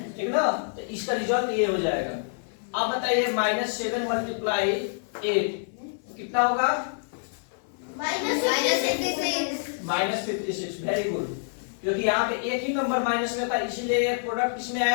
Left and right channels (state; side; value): silent; right; 60 dB below the other